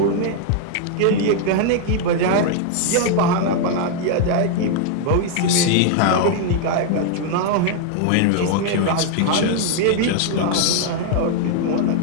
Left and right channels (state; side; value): different; both; correlation 0.00